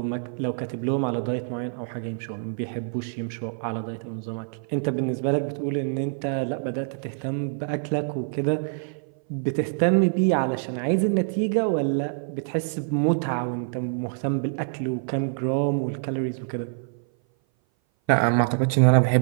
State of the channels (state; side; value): silent; left; 58 dB below the other